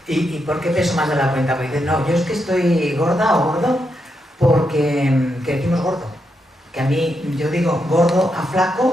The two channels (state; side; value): normal; both; correlation 0.83